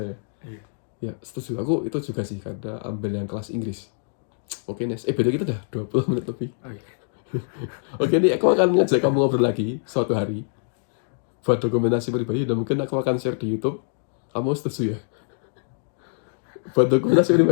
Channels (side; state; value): right; silent; digital silence